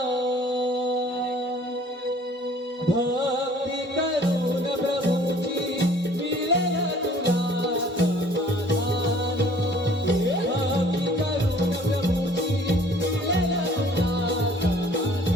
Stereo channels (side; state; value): both; normal; correlation 0.54